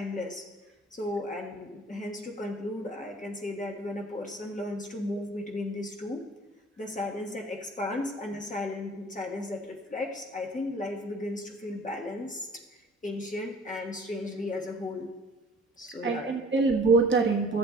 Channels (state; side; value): normal; both; correlation 0.50